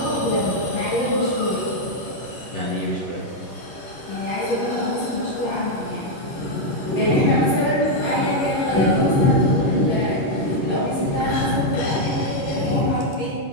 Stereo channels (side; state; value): right; late; 11 ms